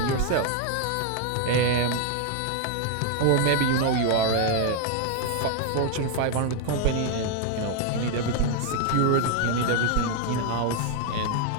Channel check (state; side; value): different; both; correlation 0.00